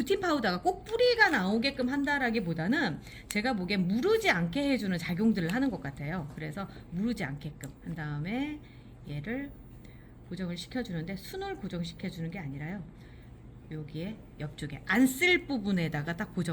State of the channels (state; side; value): identical; both; correlation 1.00